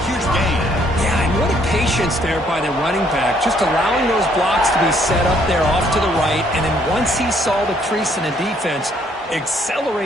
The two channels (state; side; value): normal; both; correlation 0.66